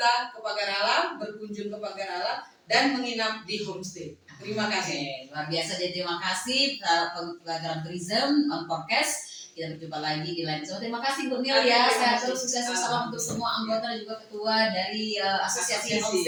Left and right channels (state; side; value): identical; both; correlation 1.00